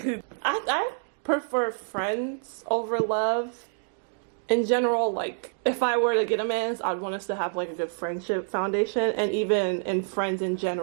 you. I prefer friends over love. In general, like, if I were to get a man, I'd want us to have, like, a good friendship foundation. And even in friends in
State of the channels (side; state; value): left; silent; digital silence